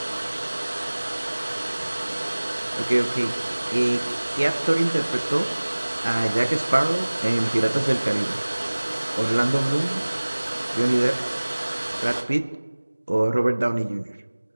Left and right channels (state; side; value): inverted; both; correlation -1.00